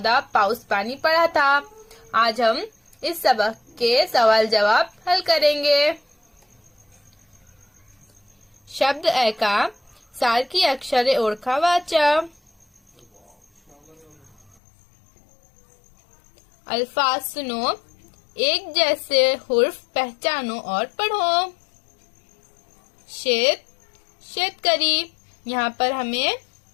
पाउस पानी पढ़ा था। आज हम इस सबक के सवाल जवाब हल करेंगे। शब्द ऐका सारखी अक्षरे ओळखा वाचा। अल्फाज सुनो, एक जैसे हुर्फ पहचानो और पढ़ो। शेत, शेतकरी, यहाँ पर हमें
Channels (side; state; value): right; drops out; at 14.6 s